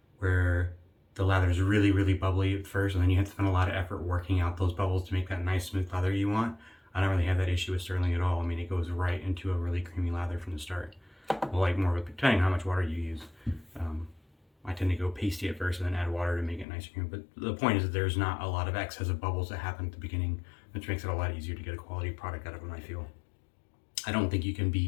where the lather is really, really bubbly at first, and then you have to spend a lot of effort working out those bubbles to make that nice smooth lather you want. I don't really have that issue with Stirling at all. I mean, it goes right into a really creamy lather from the start. Well, like more of a, depending on how much water you use. I tend to go pasty at first and then add water to make it nice and creamy. But the point is that there's not a lot of excess of bubbles that happen at the beginning, which makes it a lot easier to get a quality product out of them, I feel. I don't think you can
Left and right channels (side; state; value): right; drops out; at 16.7 s